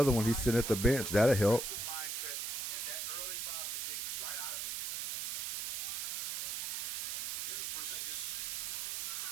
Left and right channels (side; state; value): right; noise; hiss, 2 dB below the sound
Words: one. He's sitting at the bench. That'll help.